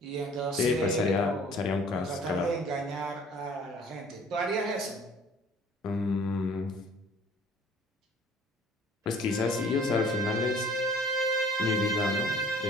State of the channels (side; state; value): both; normal; correlation 0.52